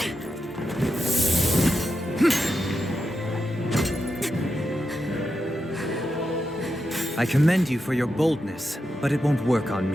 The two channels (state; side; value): normal; both; correlation 0.87